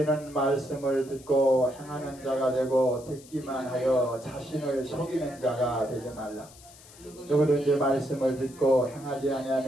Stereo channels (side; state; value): left; noise; hiss, 22 dB below the sound